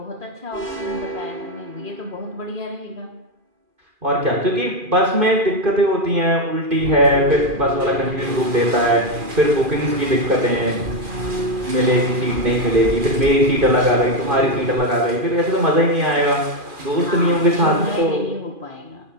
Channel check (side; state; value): left; late; 2.4 ms